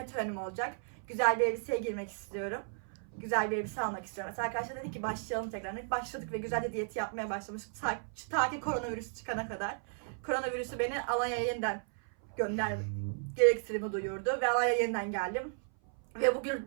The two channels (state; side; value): silent; left; 55 dB below the other